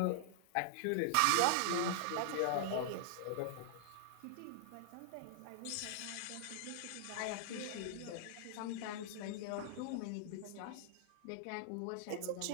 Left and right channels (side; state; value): both; different; correlation -0.01